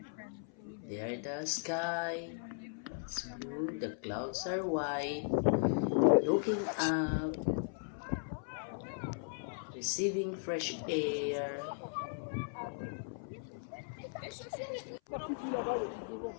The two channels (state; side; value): silent; right; 53 dB below the other